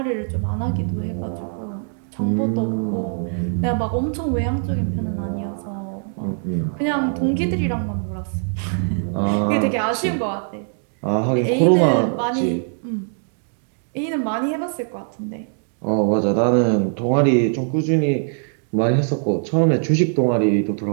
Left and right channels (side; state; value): left; silent; 60 dB below the other